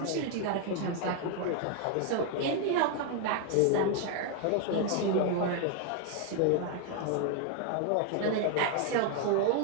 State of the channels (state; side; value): different; both; correlation 0.00